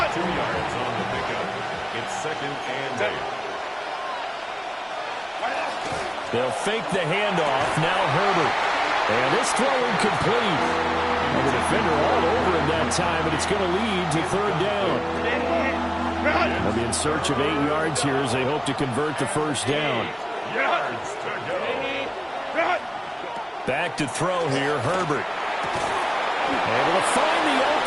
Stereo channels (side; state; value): both; identical; correlation 1.00